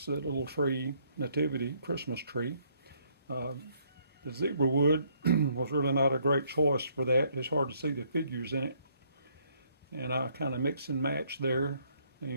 little tree, nativity Christmas tree. The zebra wood was really not a great choice for that. It's hard to see the figures in it. And I kind of mix and match there. And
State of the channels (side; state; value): both; inverted; correlation -0.67